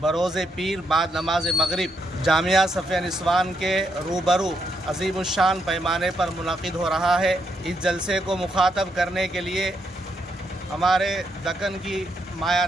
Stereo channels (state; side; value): normal; both; correlation 0.78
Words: बरोज़े पीर बाद नमाज मगरिब जामिया सफ़िया निस्वान के रूबरू अज़ीमुश्शान पैमाने पर मुनक़िद हो रहा है। इस जलसे को मुखातब करने के लिए हमारे दक्कन की